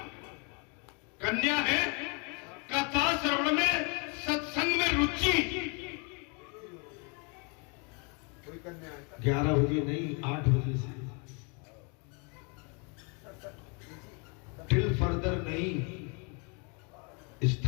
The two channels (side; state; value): right; quieter; 34.6 dB